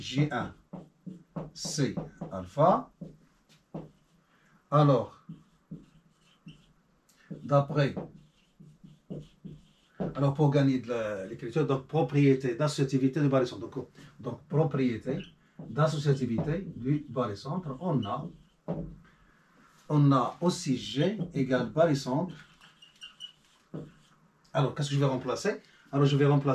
C alpha. Alors, pour gagner de l'écriture, donc propriété d'associativité du barycentre. Donc propriété d'associativité du barycentre, on a aussi G égale barycentre. Alors, qu'est-ce que je vais remplacer? Alors, je vais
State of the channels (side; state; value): both; identical; correlation 1.00